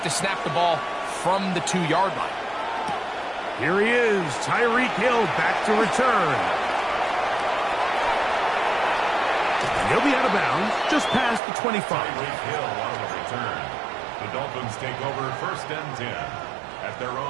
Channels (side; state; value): left; drops out; at 11.4 s